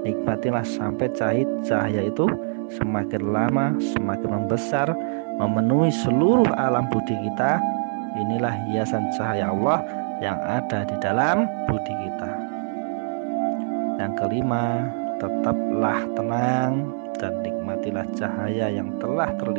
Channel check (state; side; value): silent; left; digital silence